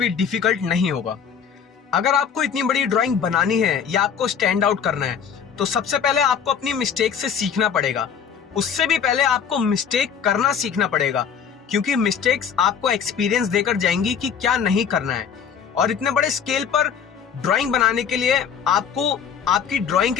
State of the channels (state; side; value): quieter; right; 7.4 dB